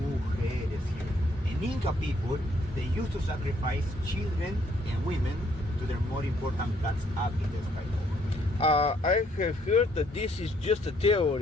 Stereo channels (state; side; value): normal; both; correlation 0.68